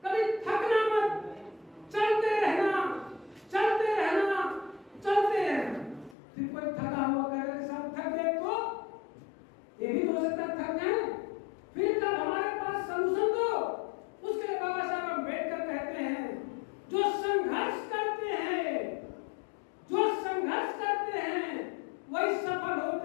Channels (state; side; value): drops out; right; at 6.2 s